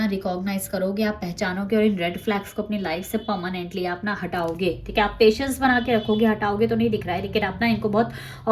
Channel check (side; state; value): both; identical; correlation 1.00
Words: रिकॉग्नाइज करोगे, आप पहचानोगे, और इन रेड फ्लैग्स को अपनी लाइफ से परमानेंटली आप ना हटाओगे, ठीक है। आप पेशेंस बना के रखोगे, हटाओगे तो नहीं दिख रहा है, लेकिन आप ना इनको बहुत